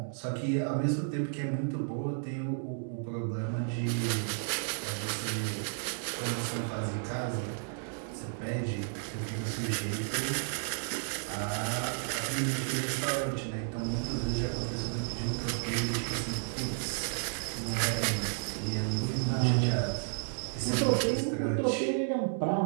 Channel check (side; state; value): left; silent; digital silence